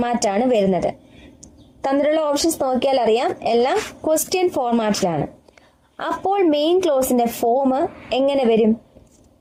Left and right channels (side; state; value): both; identical; correlation 1.00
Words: ആണ് വരുന്നത്. തന്നിട്ടുള്ള ഓപ്ഷൻസ് നോക്കിയാൽ അറിയാം, എല്ലാം ക്വസ്റ്റ്യൻ ഫോർമാറ്റിലാണ്. അപ്പോൾ മെയിൻ ക്ലോസിന്റെ ഫോം എങ്ങനെ വരും?